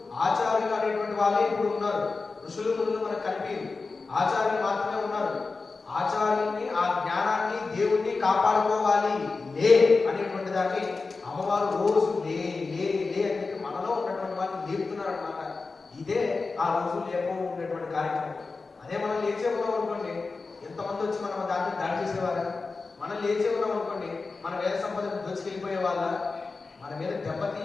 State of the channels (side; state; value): right; quieter; 4.1 dB